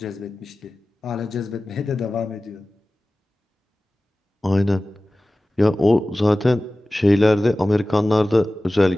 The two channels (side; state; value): both; normal; correlation 0.97